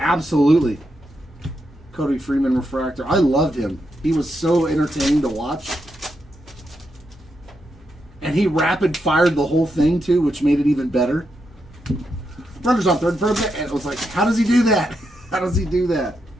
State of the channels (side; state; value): both; normal; correlation 0.83